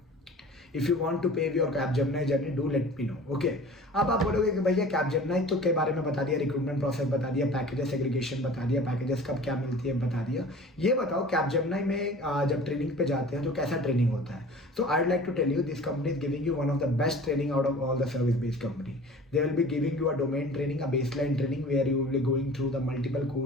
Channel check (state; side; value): normal; both; correlation 0.43